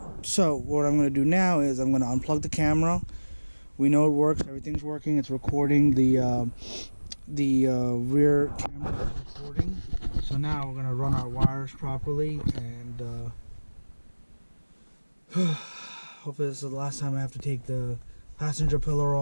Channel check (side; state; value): both; inverted; correlation -1.00